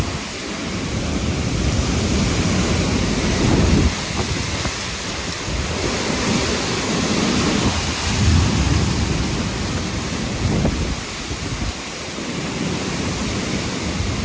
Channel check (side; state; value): both; identical; correlation 1.00